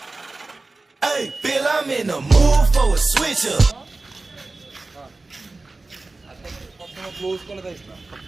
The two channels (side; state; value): left; quieter; 3.3 dB